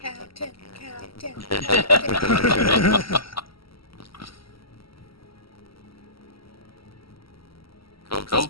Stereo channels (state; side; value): late; right; 0.75 ms